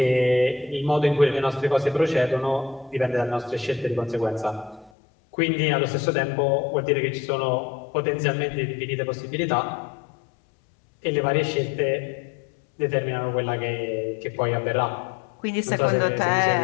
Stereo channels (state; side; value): drops out; right; at 4.9 s